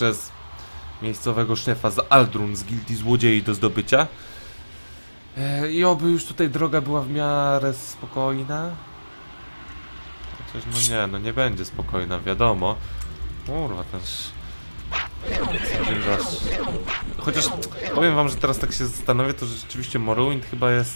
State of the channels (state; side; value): inverted; both; correlation -1.00